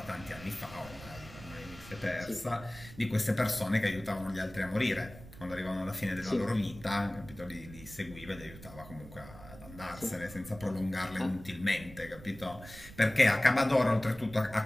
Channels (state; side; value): noise; right; rumble, 17 dB below the sound